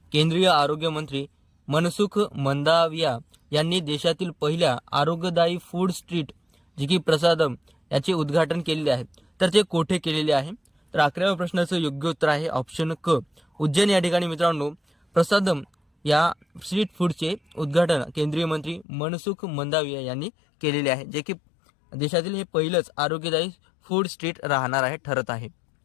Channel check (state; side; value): drops out; right; at 18.9 s